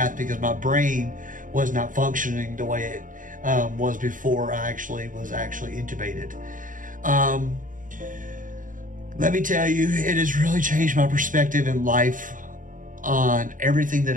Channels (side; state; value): left; late; 0.38 ms